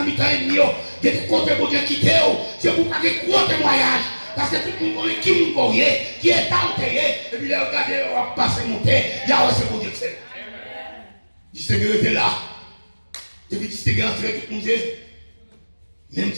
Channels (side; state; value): both; inverted; correlation -1.00